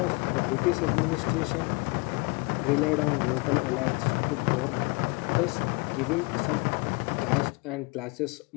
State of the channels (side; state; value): right; quieter; 27.6 dB